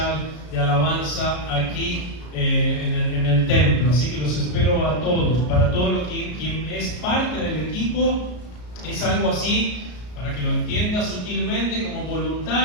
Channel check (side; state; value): right; late; 33 ms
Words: de alabanza aquí en el templo. Así que los espero a todos. Para todo lo que quien es parte del equipo, es algo así, para que lo entienda sutilmente, como